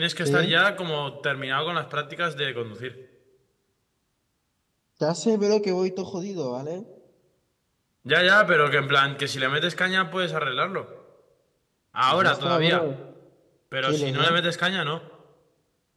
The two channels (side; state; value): both; identical; correlation 1.00